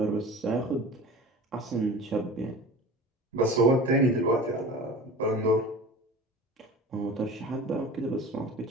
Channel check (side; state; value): both; normal; correlation 0.37